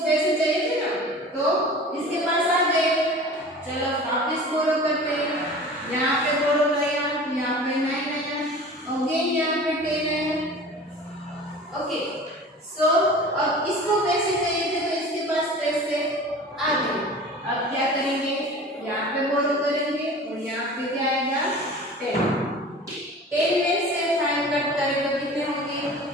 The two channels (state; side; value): normal; both; correlation 0.40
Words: चाहिए थे ना तो इसके पास आ गए, चलो वापस बोरो करते हैं। यहाँ पे बोरो आया, यहाँ पे 9 आया, अगेन यहाँ पे 10 आया। ओके सो अब इसको पैसे चाहिए थे तो इसके पास पैसे आ गए। अब क्या करेंगे, यहाँ पे बोरो करेंगे और यहाँ पे क्या आएगा 10। 10 में से 5 कट करें तो कितने होंगे